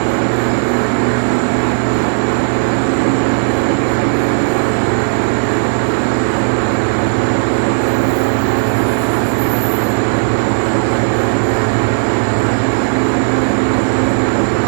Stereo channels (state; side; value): silent; left; digital silence